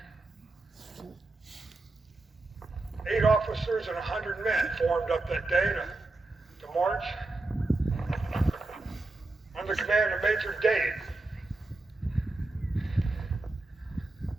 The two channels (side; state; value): left; quieter; 3.1 dB